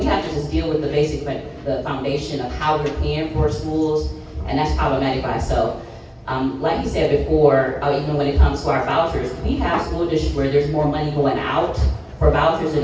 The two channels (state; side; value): identical; both; correlation 1.00